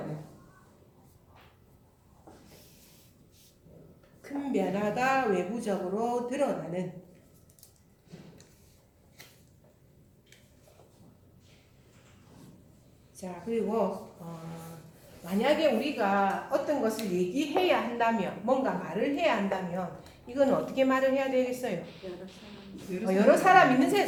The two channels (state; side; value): identical; both; correlation 1.00